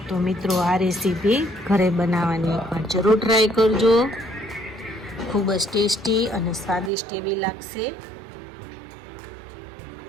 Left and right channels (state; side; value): drops out; left; at 6.9 s